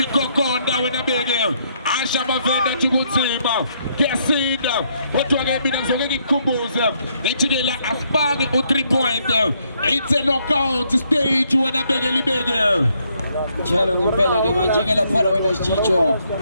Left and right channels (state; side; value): inverted; both; correlation -0.72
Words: wena beke Asha Mavenda athi kutsima kuyasinda kodwa ke mina ngizoke ngikukhumbuze ngithi ke la asibani u3 point it's a knockout stage wena beke libeke njalo ngempela ke manje ke lapha wena sichicho